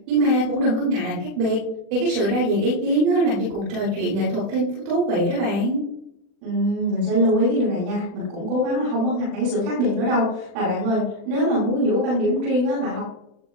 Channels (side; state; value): left; late; 40 ms